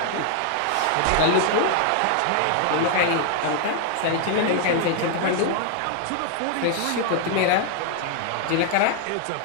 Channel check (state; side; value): different; both; correlation 0.00